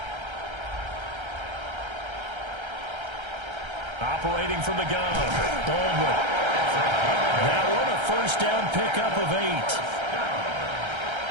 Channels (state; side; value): late; left; 1.3 ms